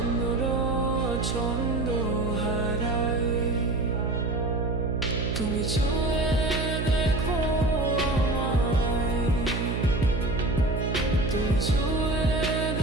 ছন্দ হারায়। তুমি ছুঁয়ে দেখো আমায়, তুমি ছুঁয়ে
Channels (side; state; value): right; noise; hum, 1 dB below the sound